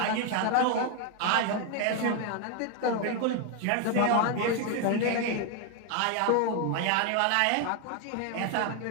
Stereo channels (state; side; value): different; both; correlation 0.01